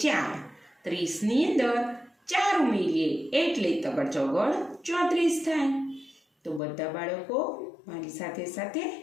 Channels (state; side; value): drops out; right; at 6.6 s